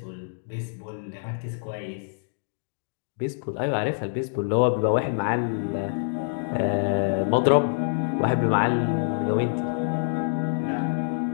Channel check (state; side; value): silent; right; digital silence